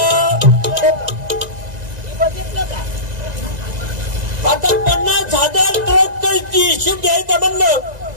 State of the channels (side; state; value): left; late; 1.9 ms